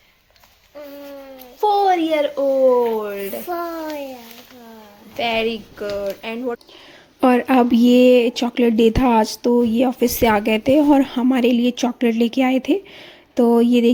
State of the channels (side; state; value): both; identical; correlation 1.00